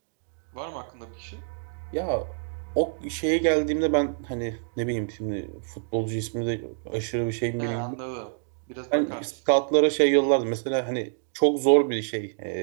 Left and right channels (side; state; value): left; silent; digital silence